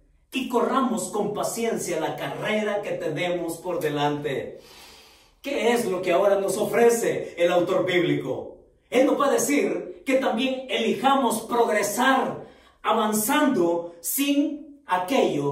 y corramos con paciencia la carrera que tenemos por delante. ¿Qué es lo que ahora nos ofrece el autor bíblico? Él nos va a decir que también elijamos progresar, avanzando sin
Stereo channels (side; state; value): both; identical; correlation 1.00